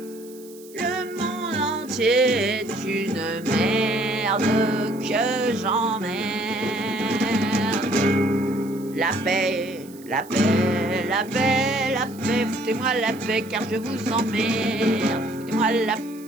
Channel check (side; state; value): right; noise; hiss, 22 dB below the sound